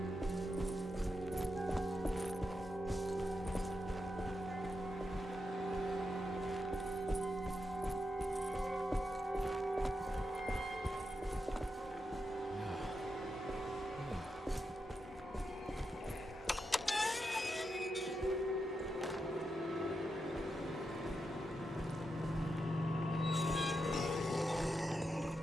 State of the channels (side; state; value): both; normal; correlation 0.86